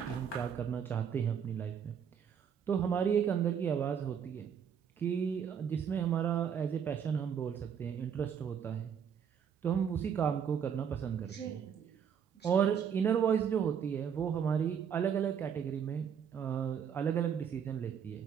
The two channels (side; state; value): left; quieter; 7.8 dB